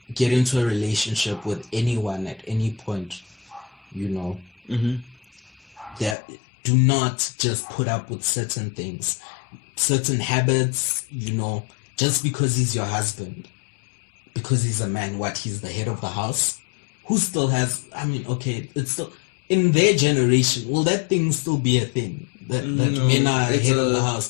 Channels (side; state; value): right; drops out; at 6.2 s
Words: get into a relationship with anyone at any point, you know, that do not just put up with certain things, certain habits, you know, just because he's your husband. Because he's a man, he's the head of the house? Who still has, I mean, okay, it's still, in their generation, will that thing still be a thing? That men are head of the